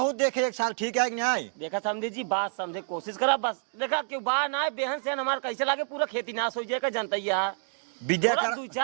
देखे एक साल ठीक है न्याय। देखा समझे जी बात समझे कोशिश करा बस देखा क्यों बाहर ना बेहन से हमारा कैसे लगे पूरा खेती नाश हो जाएगा जनता है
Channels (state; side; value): silent; left; digital silence